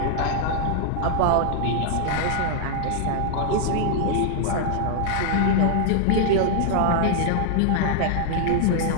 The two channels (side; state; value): both; different; correlation -0.01